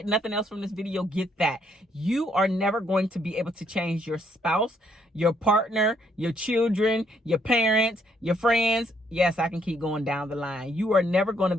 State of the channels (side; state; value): both; normal; correlation 0.70